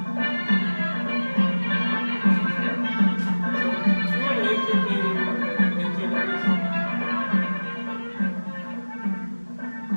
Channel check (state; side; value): inverted; both; correlation -1.00